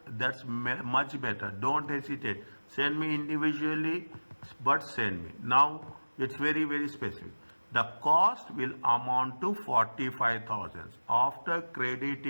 that's much better. Don't hesitate. Send me individually, but send me. Now, it's very, very specific. The cost will amount to 45,000 after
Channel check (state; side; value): inverted; both; correlation -1.00